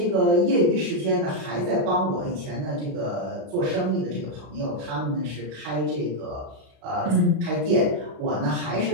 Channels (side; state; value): left; late; 37 ms